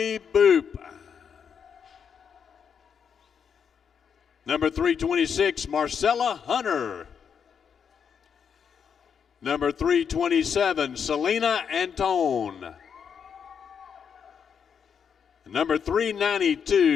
Boop. Number 326, Marcella Hunter. Number 327, Selena Antone. Number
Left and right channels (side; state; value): right; quieter; 7.1 dB